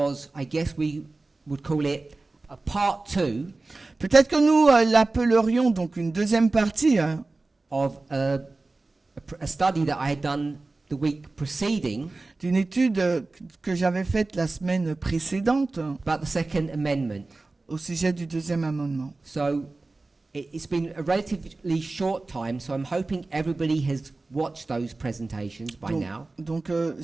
I guess we would call it a part 2 peut-être que nous l'appellerions donc une deuxième partie of a study that I had done the week preceding d'une étude que j'avais faite la semaine précédente about the Second Amendment. au sujet du deuxième amendement. So, it's been a relatively short time, so I'm hoping everybody has watched those presentations by now. Donc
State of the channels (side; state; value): left; quieter; 3.3 dB